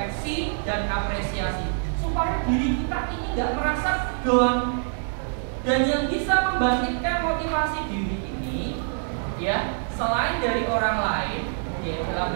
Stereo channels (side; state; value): left; silent; digital silence